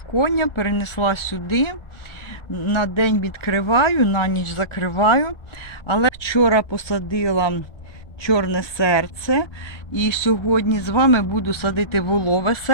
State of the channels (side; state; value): right; late; 1.3 ms